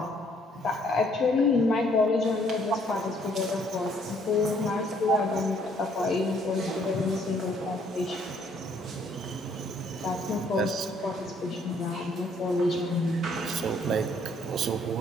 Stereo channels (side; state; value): both; normal; correlation 0.65